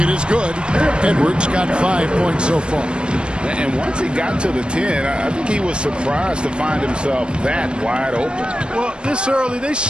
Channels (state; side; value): late; left; 0.054 ms